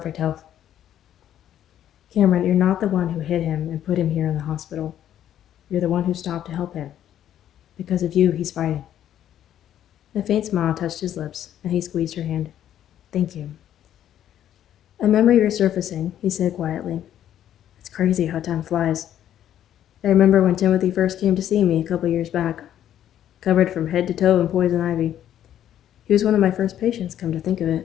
health. Cameron, you're not the one who hit him and put him here in the hospital. You're the one who stopped to help him. Because of you, he's fighting. A faint smile touched his lips, and he squeezed her hand. Thank you. A memory resurfacing, he said quietly. It's crazy how time flies. I remember when Timothy first came to see me a couple years back, covered from head to toe in poison ivy. He was one of my first patients, come to think of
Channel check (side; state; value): right; quieter; 11.0 dB